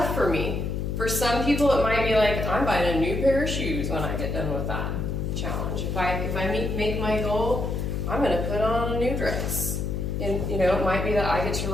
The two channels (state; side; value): noise; left; hum, 2 dB below the sound